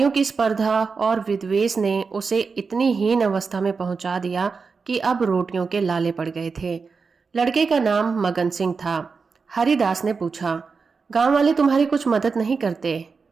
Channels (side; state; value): left; quieter; 4.9 dB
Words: की स्पर्धा और विद्वेष ने उसे इतनी हीन अवस्था में पहुंचा दिया कि अब रोटियों के लाले पड़ गए थे। लड़के का नाम मगन सिंह था। हरिदास ने पूछा, गांव वाले तुम्हारी कुछ मदद नहीं करते?